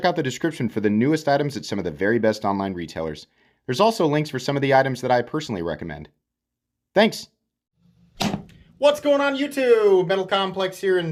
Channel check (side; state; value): both; identical; correlation 1.00